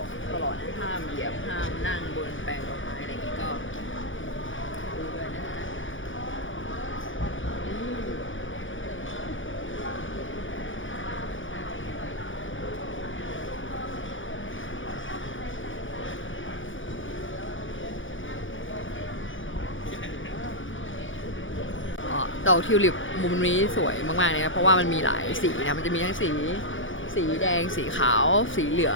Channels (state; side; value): late; right; 0.57 ms